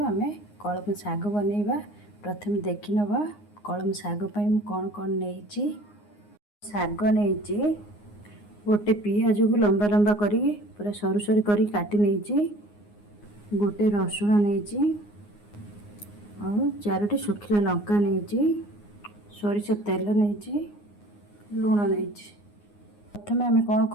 आम कलम साग बनइबा। प्रथम देखि नबा कलम साग पई मु कोन कोन नेइची। साग नेइची गोटे पियाज को लंबा लंबा करी पूरा सरू सरू करी काटी नेइची। गोटे रसुण नेइची और चारोटी सुखिला लंका नेइची। सरिष तेल नेइची, लूण नेइची। प्रथम आम कौन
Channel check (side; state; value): right; late; 9.7 ms